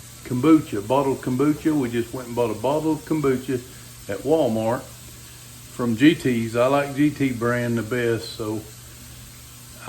kombucha, bottled kombucha. We just went and bought a bottle of kombucha at Walmart from GT's. I like GT brand the best, so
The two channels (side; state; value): both; identical; correlation 1.00